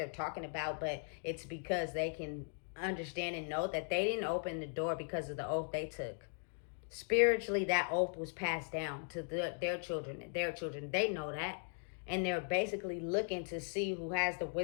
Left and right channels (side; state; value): right; silent; 52 dB below the other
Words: talking about, but it's because they can understand and know that they didn't open the door because of the oath they took. Spiritually, that oath was passed down to their children. They know that. And they're basically looking to see who has the